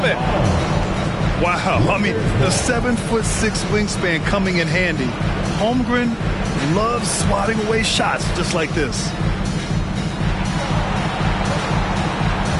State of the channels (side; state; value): both; identical; correlation 1.00